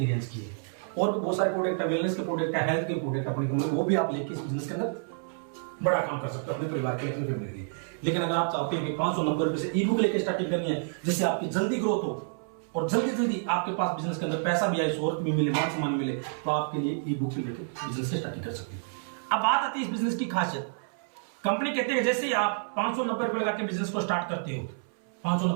रेंज की है। और भी बहुत सारे प्रोडक्ट है, वेलनेस के प्रोडक्ट है, हेल्थ के प्रोडक्ट अपनी कंपनी, वो भी आप लेके इस बिजनेस के अंदर बड़ा काम कर सकते हो अपने परिवार के लिए, अपनी फैमिली के लिए। लेकिन अगर आप चाहते हो कि 590 रुपए से ई बुक लेके स्टार्टिंग करनी है, जिससे आपकी जल्दी ग्रोथ हो और जल्दी जल्दी आपके पास बिजनेस के अंदर पैसा भी आए, शोहरत भी मिले, मान सम्मान मिले, तो आपके लिए ई बुक लेकर बिजनेस से स्टार्टिंग कर सकते हो। अब बात आती है इस बिजनेस की खासियत। कंपनी कहते हैं जैसे ही आप 590 रुपए लगा के बिजनेस को स्टार्ट करते हो,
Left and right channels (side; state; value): left; silent; 59 dB below the other